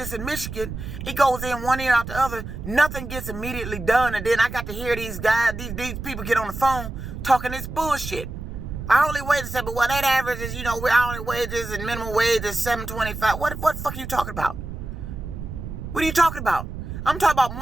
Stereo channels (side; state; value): right; noise; rumble, 8 dB below the sound